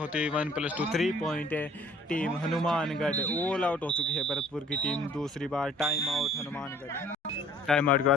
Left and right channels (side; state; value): both; normal; correlation 0.55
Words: है। 1 + 2 3 पॉइंट है। टीम हनुमानगढ़ ऑल आउट हो चुकी है। भरतपुर की टीम दूसरी बार time out Hanumangarh. Time out के